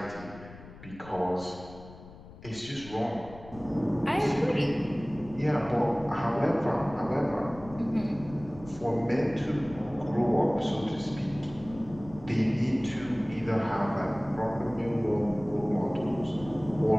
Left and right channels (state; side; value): noise; left; rumble, 18 dB below the sound